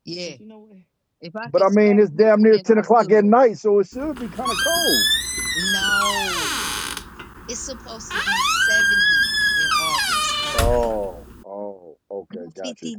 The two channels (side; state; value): both; identical; correlation 1.00